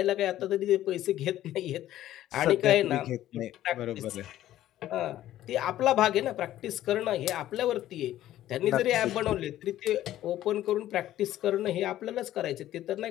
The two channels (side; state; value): right; quieter; 13.3 dB